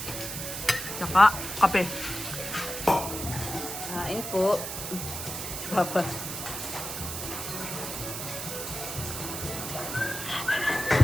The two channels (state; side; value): noise; right; hiss, 5 dB below the sound